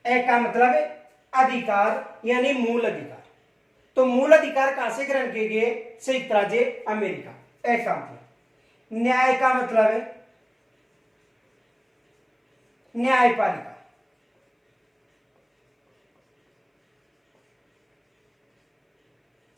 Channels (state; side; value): identical; both; correlation 1.00